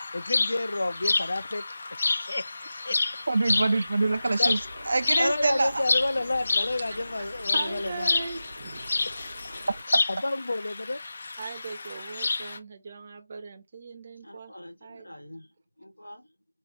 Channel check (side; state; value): both; inverted; correlation -0.94